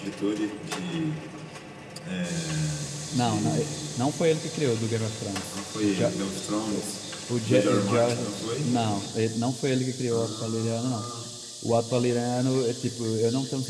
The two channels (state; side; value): identical; both; correlation 1.00